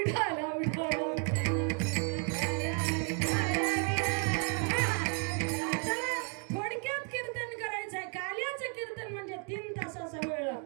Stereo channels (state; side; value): quieter; left; 39.9 dB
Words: विठाला. थोडक्यात कीर्तन करायचंय. काल्याचं कीर्तन म्हणजे 3 तासाचा वेळ